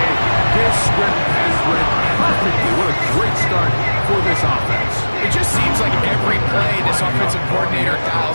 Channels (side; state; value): both; inverted; correlation -1.00